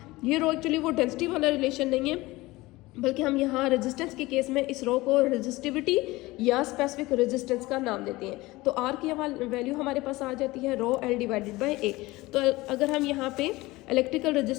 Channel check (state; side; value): quieter; right; 20.2 dB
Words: ये रो एक्चुअली वो डेंसिटी वाला रिलेशन नहीं है बल्कि हम यहाँ रेजिस्टेंस के केस में इस रो को रेजिस्टिविटी या स्पेसिफिक रेजिस्टेंस का नाम देते हैं। तो R की वैल्यू हमारे पास आ जाती है रो L डिवाइडेड बाय A। तो अगर हम यहाँ पे इलेक्ट्रिकल